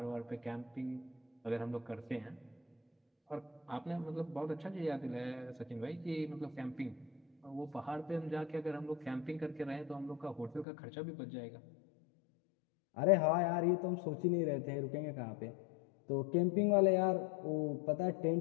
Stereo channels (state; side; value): drops out; right; at 10.7 s